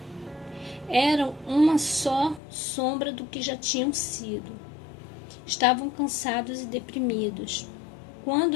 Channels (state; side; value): drops out; right; at 2.4 s